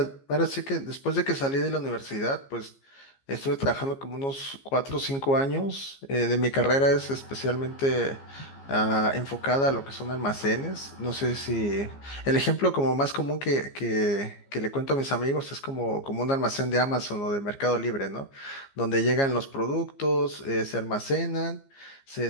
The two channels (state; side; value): late; right; 15 ms